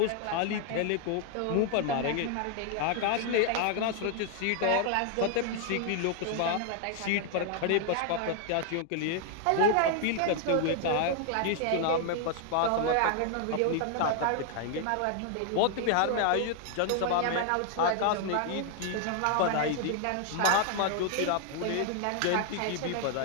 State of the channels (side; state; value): both; different; correlation 0.00